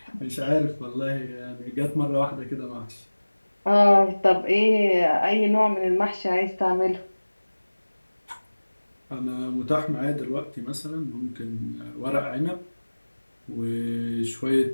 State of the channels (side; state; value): both; inverted; correlation -1.00